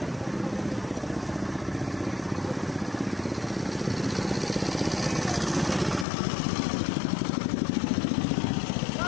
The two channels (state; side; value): drops out; right; at 6.1 s